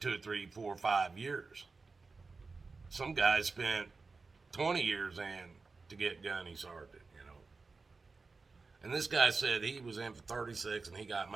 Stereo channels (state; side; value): quieter; left; 4.1 dB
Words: 3, 4, 5 years. Some guys spent 20 years in to get gunny sergeant, you know. And this guy said he was in for 36 and he got